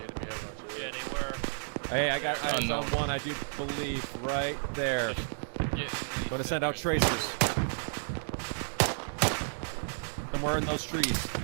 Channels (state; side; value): silent; left; digital silence